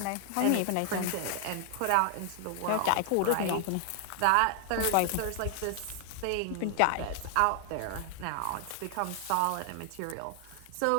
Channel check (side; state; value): both; different; correlation 0.00